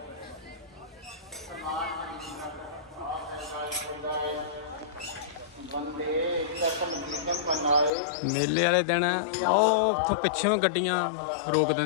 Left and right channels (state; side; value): drops out; right; at 7.9 s